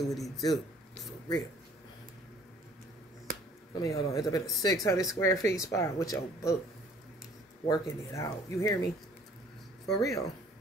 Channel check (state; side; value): normal; both; correlation 0.55